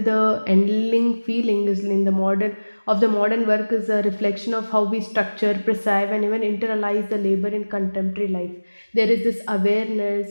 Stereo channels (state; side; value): inverted; both; correlation -1.00